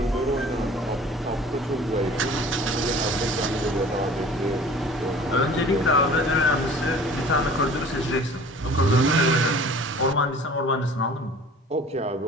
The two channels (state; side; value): normal; both; correlation 0.46